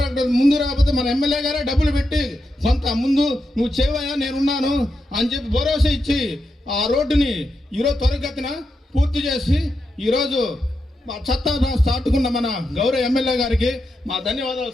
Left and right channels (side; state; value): both; normal; correlation 0.86